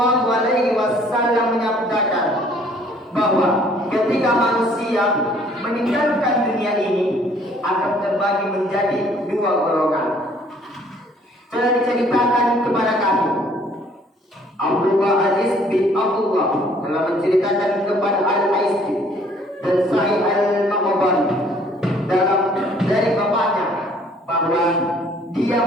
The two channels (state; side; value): normal; both; correlation 0.59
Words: alaihi wasallam menyabdakan bahwa ketika manusia meninggalkan dunia ini akan terbagi menjadi dua golongan. Telah diceritakan kepada kami, Abdullah Aziz bin Abdullah telah menceritakan kepada Al-Aisy dan Sa'id Al-Maqbari dari bapaknya bahwa dia